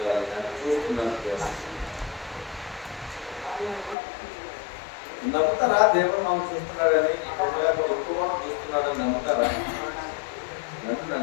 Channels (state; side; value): drops out; right; at 4.0 s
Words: నన్ను చూస్తున్నాను. నమ్ముతారా దేవుడు మనం చూస్తున్నాడని? ఎక్కువ చూస్తున్నాడని నమ్ముతారా?